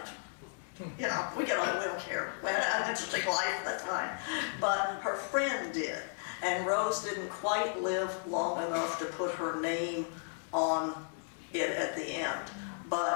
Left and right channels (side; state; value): right; silent; digital silence